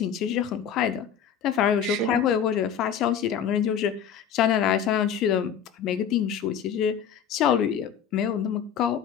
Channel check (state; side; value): quieter; right; 8.2 dB